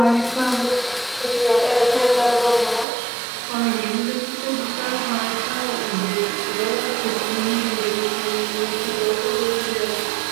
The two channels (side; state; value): left; drops out; at 2.9 s